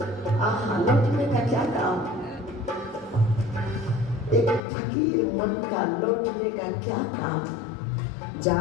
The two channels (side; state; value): right; drops out; at 4.6 s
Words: आहा लौटने का क्या काम, एक फकीर मन का लौटने का क्या काम।